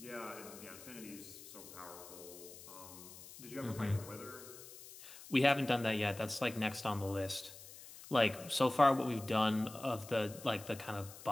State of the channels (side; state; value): left; noise; hiss, 16 dB below the sound